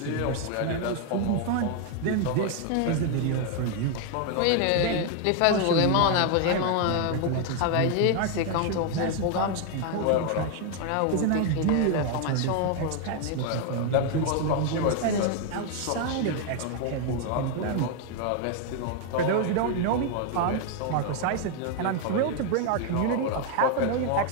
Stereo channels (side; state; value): both; different; correlation 0.01